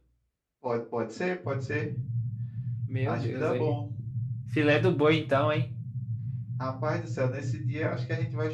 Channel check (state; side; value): identical; both; correlation 1.00